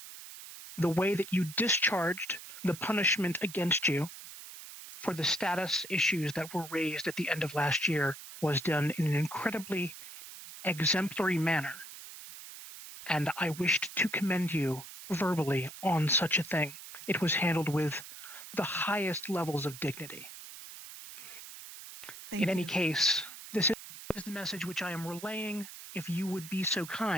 the way that you discharged the punishment against you for the status issues that were raised at the end of last year was done in an incredibly exemplary manner. And I wished to commend you verbally on such a thing. It was handled with the highest levels of dignity. Thank In any you. case, this is the message which I am relaying. If you would be so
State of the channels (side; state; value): right; noise; hiss, 13 dB below the sound